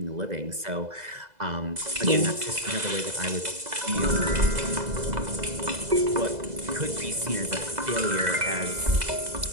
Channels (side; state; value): left; late; 2.0 ms